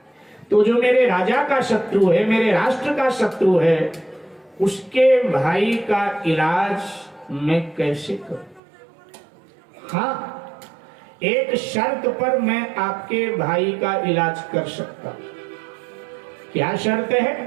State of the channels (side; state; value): left; drops out; at 8.6 s